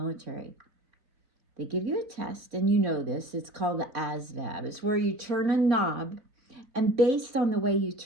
They give you a test, and you know this. It's called the ASVAB. It's where you turn a knob, and based on the way you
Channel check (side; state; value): left; late; 3.7 ms